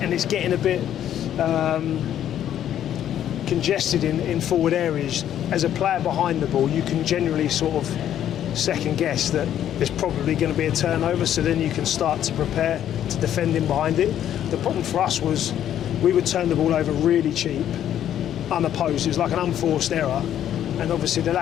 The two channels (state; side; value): quieter; right; 10.7 dB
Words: it's getting a bit congested in forward areas, as a player behind the ball, you can generally sort of second guess that there's probably going to be a turnover, so then you can start to prepare to defend in behind it. The problem for us was we would turn the ball over really cheap, unopposed. It was like an unforced error, and obviously the